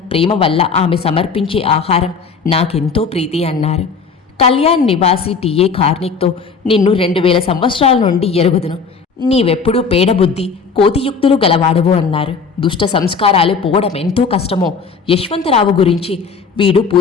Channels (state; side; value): quieter; right; 5.3 dB